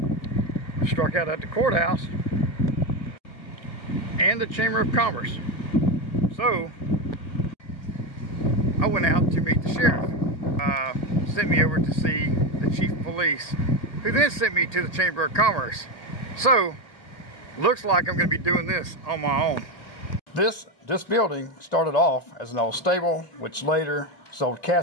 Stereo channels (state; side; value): late; right; 1.5 ms